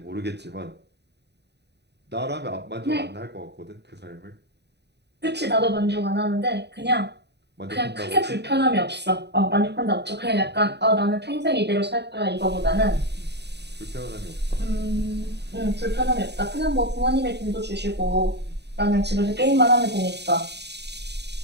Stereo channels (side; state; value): left; late; 0.49 ms